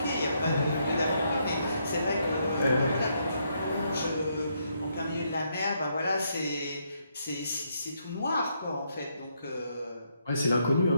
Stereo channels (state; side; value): inverted; both; correlation -0.76